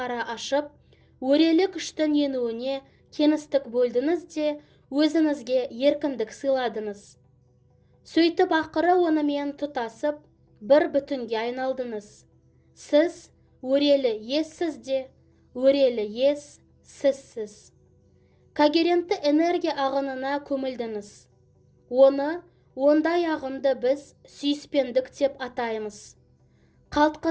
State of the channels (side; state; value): both; identical; correlation 1.00